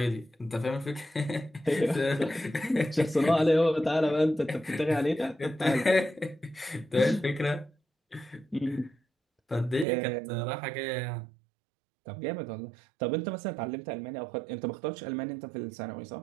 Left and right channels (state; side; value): drops out; left; at 9.9 s